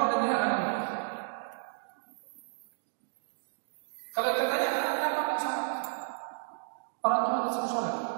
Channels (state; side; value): silent; left; digital silence